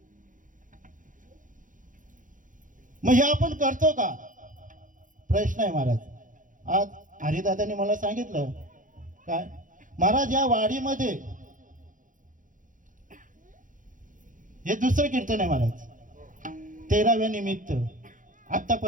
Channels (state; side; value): late; left; 0.38 ms